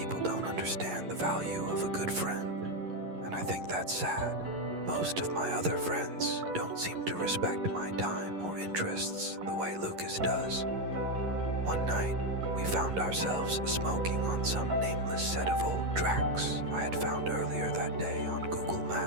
don't understand the value of a good friend, and I think that's sad. Most of my other friends don't seem to respect my time or interests the way Lucas does. One night, we found ourselves smoking on some nameless set of old tracks I had found earlier that day on Google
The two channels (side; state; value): left; late; 11 ms